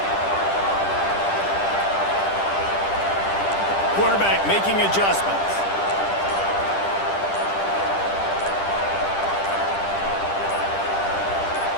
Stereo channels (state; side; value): late; right; 10 ms